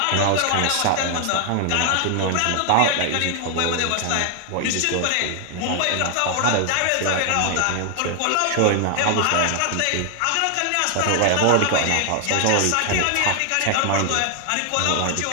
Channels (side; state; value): both; different; correlation 0.00